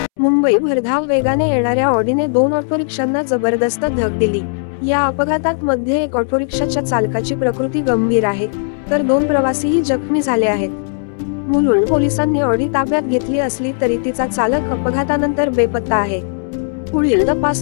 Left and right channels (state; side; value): silent; right; 69 dB below the other